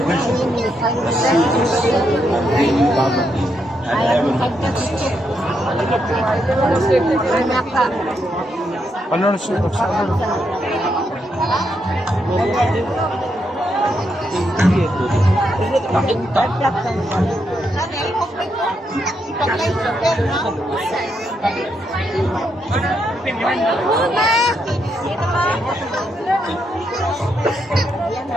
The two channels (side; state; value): both; normal; correlation 0.80